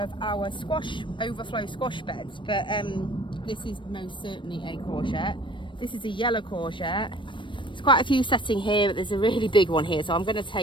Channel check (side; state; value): right; late; 0.24 ms